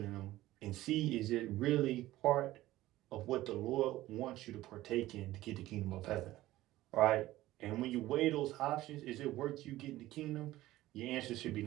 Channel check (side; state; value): left; quieter; 16.1 dB